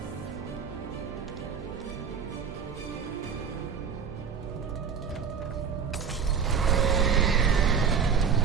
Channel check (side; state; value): left; quieter; 6.7 dB